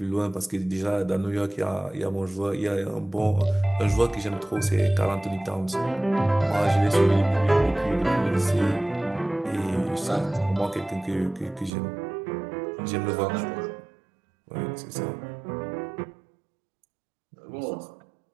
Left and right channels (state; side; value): drops out; left; at 11.7 s